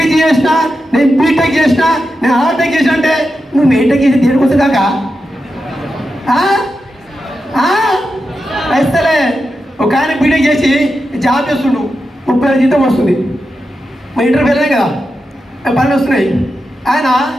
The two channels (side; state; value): both; normal; correlation 0.89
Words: చేసిన, నేను బీటెక్ చేసిన, నేను ఆర్టెక్ చేసిన అంటే నువ్వు బీటెక్ చేసి దేనికి వస్తుంది కాక వేస్తలే. ఒక ఆయన బీటెక్ చేసి జాబ్ చేస్తుండు, 30,000 జీతం వస్తుంది. మా ఇంటర్వ్యూ వెళ్ళాయి కదా, పనులు వస్తున్నాయి. ఆయన